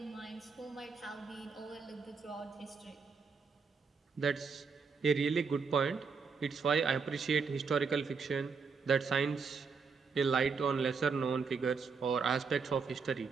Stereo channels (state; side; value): quieter; left; 5.2 dB